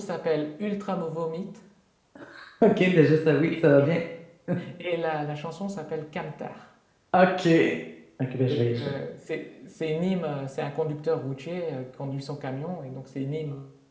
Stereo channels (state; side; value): identical; both; correlation 1.00